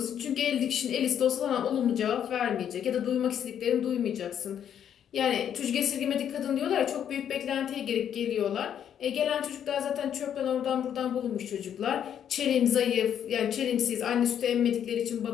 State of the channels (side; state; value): right; quieter; 9.2 dB